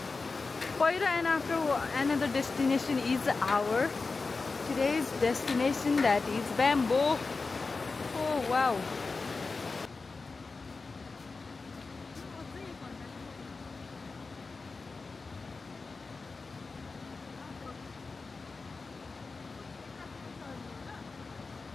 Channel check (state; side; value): quieter; right; 4.1 dB